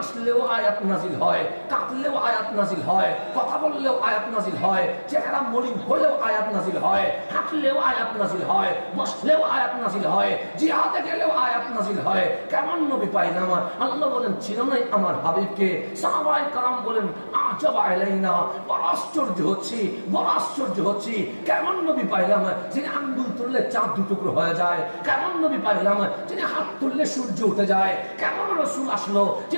আয়াত নাযিল হয়, কাঁদলেও আয়াত নাযিল হয়, কথা বললেও আয়াত নাযিল হয়, চেহারা মলিন হলেও আয়াত নাযিল হয়, হাঁটলেও আয়াত নাযিল হয়, বসলেও আয়াত নাযিল হয়, জিহাদে গেলেও আয়াত নাযিল হয়। কেমন নবী পাইলাম? আল্লাহ বলেন চিনো নাই আমার হাবিবকে? সাহাবায়ে কেরাম বলেন আজাবা আলাইনা, বড় আশ্চর্য হচ্ছি কেমন নবী পাইলাম যিনি আঙ্গুল তুললে চাঁদ দুটুকরো হয়ে যায়, কেমন নবী পাইলাম যিনি হাত তুললে সূর্য উঠে যায়, কেমন রাসূল আসলো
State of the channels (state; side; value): inverted; both; correlation -1.00